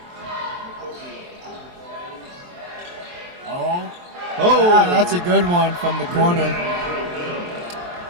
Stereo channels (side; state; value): left; late; 23 ms